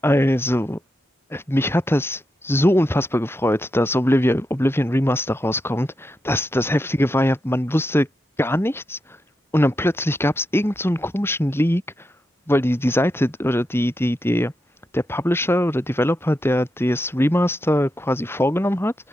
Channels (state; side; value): normal; both; correlation 0.85